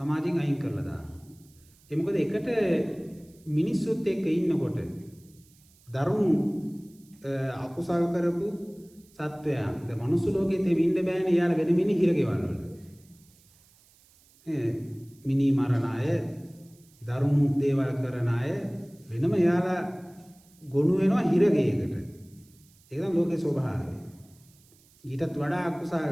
අයින් කරලා දාන්න. ඒ මොකද එකට මිනිස්සුත් එක්ක ඉන්නකොට දරුණු අකුසල් කරපු සත්වයන් ද මනුස්ස ලෝකෙත් ඉන්න බෑනේ යාළ වෙන මිනි හිරගෙවල් වල. මිනි මරණ අය, දරුණු දේවල් කරන අය වෙනම යාලා ගොනු වෙනවා හිරගෙයකට. ඒක තමයි ලෝකේ ස්වභාවය. ඊටත් වඩා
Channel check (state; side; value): noise; right; hiss, 29 dB below the sound